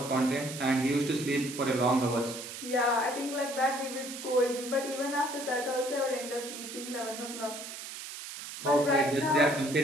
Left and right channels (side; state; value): right; noise; hiss, 10 dB below the sound